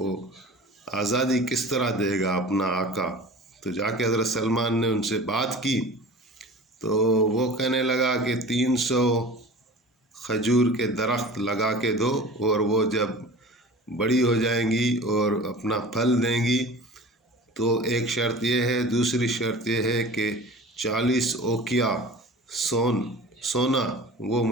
آزادی کس طرح دے گا اپنا آقا؟ تو جا کے حضرت سلمان نے ان سے بات کی تو وہ کہنے لگا کہ 300 کھجور کے درخت لگا کے دو، اور وہ جب بڑی ہو جائیں گی اور اپنا پھل دیں گی تو ایک شرط یہ ہے، دوسری شرط یہ ہے کہ 40 اوقیہ سونا وہ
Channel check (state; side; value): normal; both; correlation 0.39